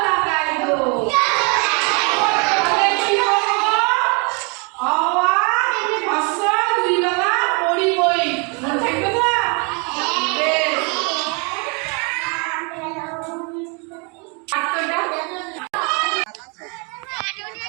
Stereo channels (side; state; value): left; quieter; 33.7 dB